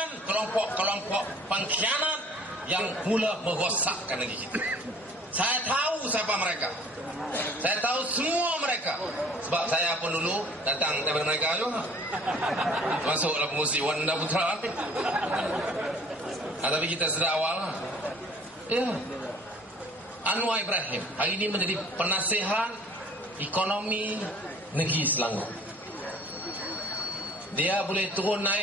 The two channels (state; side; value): normal; both; correlation 0.51